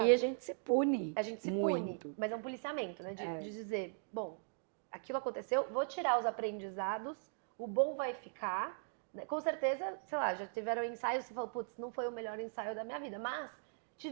E a gente se pune A gente se muito. pune, mas é um policiamento, né? De dizer, bom, aquilo aconteceu, vou tirar os aprendizados, o bom vai ficar. Né? Com certeza, sei lá, já tiveram ensaios que você falou, putz, não foi o melhor ensaio da minha vida, mas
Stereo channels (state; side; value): silent; left; digital silence